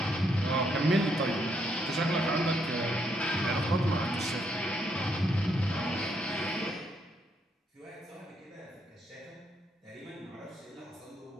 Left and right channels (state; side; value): normal; both; correlation 0.75